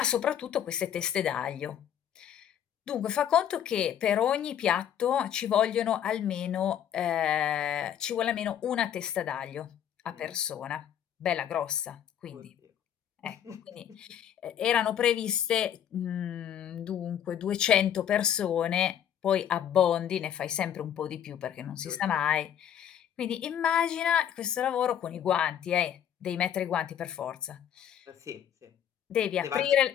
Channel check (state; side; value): quieter; right; 9.6 dB